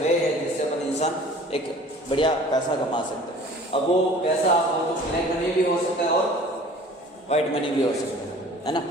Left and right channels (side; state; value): both; normal; correlation 0.47